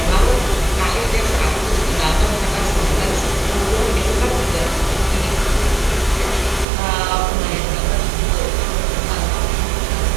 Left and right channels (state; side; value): drops out; left; at 6.7 s